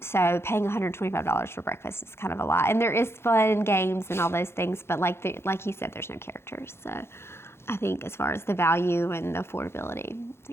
So paying $125 for breakfast is kind of a lot. And there is fun games and all those things, but like you said, there's no characters. So I think as far as the value and the affordability, I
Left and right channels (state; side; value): late; right; 0.12 ms